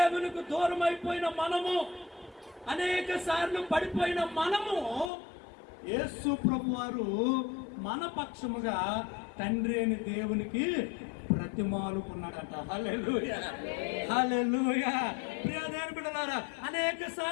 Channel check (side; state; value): right; drops out; at 5.1 s